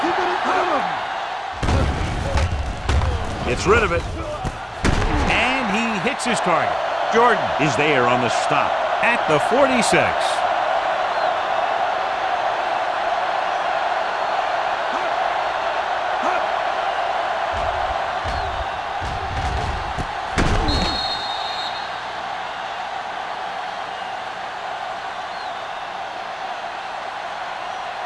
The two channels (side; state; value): both; identical; correlation 1.00